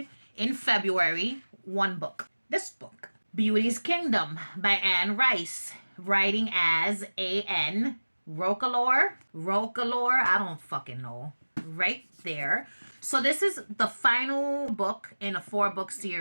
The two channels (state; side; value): inverted; both; correlation -1.00